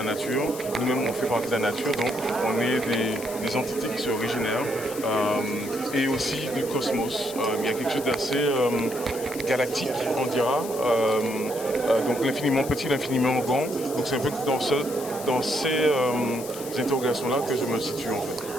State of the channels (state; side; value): noise; left; hiss, 12 dB below the sound